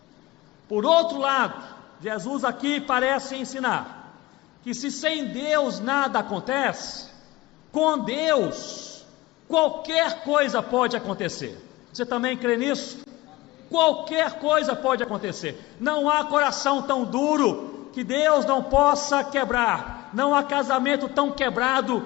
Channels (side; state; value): right; quieter; 19.3 dB